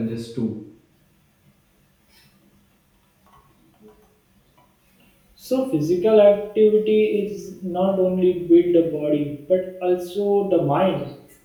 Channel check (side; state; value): both; identical; correlation 1.00